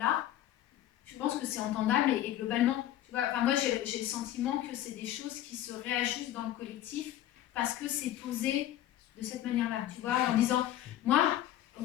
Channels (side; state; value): right; quieter; 12.8 dB